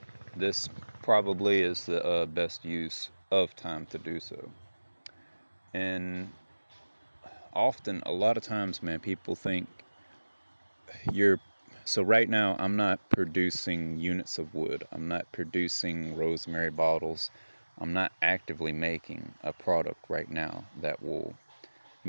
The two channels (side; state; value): both; inverted; correlation -1.00